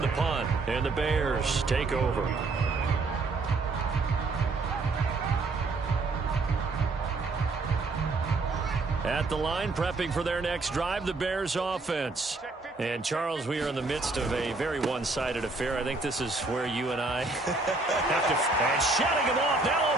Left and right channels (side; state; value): left; quieter; 3.5 dB